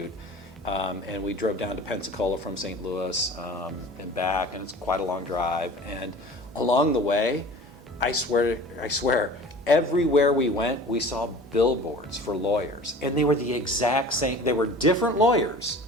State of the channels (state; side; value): normal; both; correlation 0.42